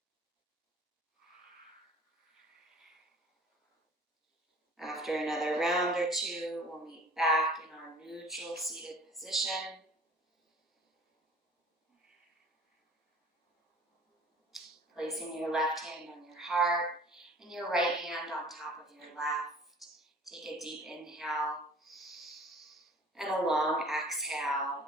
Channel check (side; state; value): both; normal; correlation 0.48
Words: After another round or two, we'll meet back in our neutral seated position. Placing your left hand on your heart and your right hand on top of your left. Take a deep inhale and a long